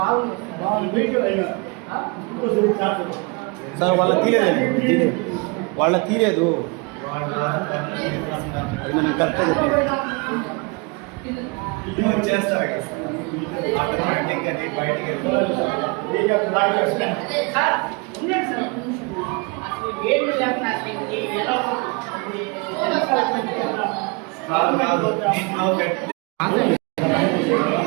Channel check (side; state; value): left; quieter; 30.2 dB